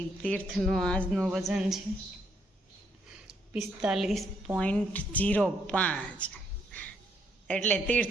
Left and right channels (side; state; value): both; normal; correlation 0.73